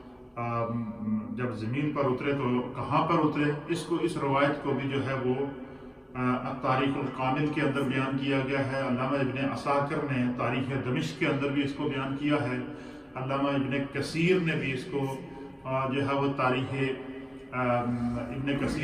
جب زمین پر اترے تو کہاں پر اترے، اس روایت کو بھی جو ہے وہ تاریخ الکامل کے اندر بیان کیا گیا ہے. علامہ ابن عساکر نے تاریخ دمشق کے اندر بھی اس کو بیان کیا ہے. علامہ ابن کثیر نے بھی اس کو جو ہے وہ تاریخ ابن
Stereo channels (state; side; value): identical; both; correlation 1.00